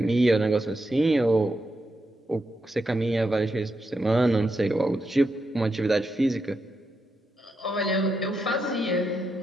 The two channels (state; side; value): normal; both; correlation 0.84